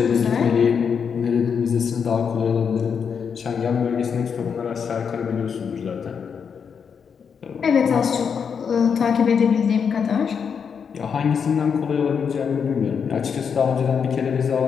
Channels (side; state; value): right; quieter; 6.7 dB